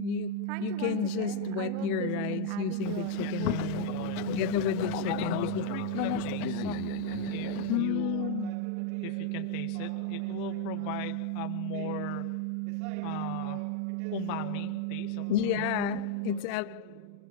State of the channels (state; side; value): different; both; correlation 0.01